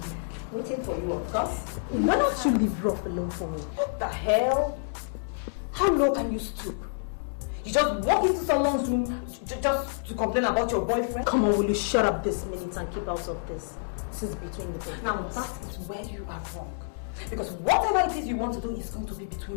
Waiting for you, of course. Why don't you leave Rough alone for me? What the hell? How low can you stoop? You just walk into someone's room just to complain about your boyfriend? Come on, will you shut up this minute and keep out of this? This is between the two. Now that is where you are wrong. Because whatever it is you want to do is going to be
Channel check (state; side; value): silent; right; digital silence